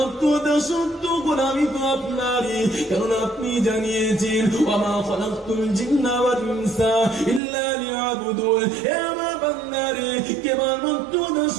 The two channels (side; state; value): left; drops out; at 7.4 s